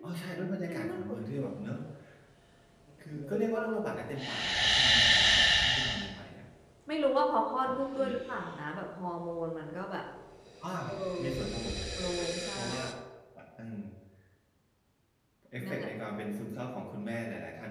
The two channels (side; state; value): both; identical; correlation 1.00